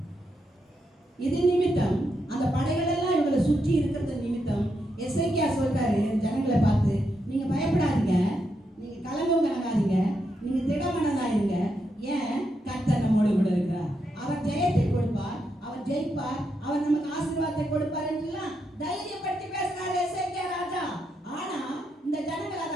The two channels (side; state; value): both; normal; correlation 0.82